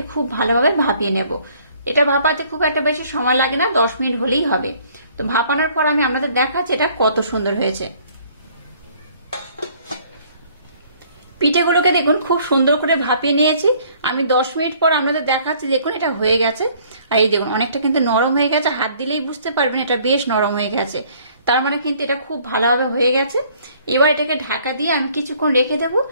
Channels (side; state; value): both; inverted; correlation -0.59